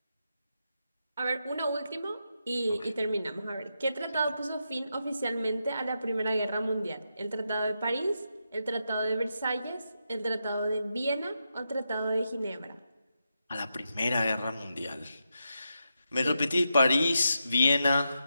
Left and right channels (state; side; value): inverted; both; correlation -0.85